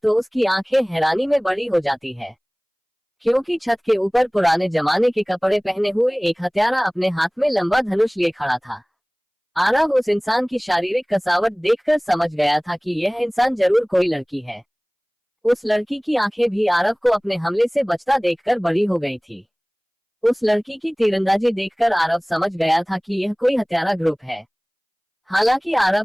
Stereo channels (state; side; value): identical; both; correlation 1.00